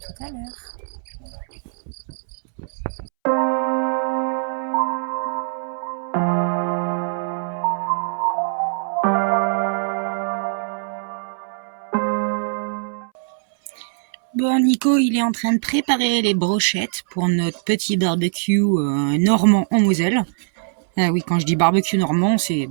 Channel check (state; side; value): silent; left; 64 dB below the other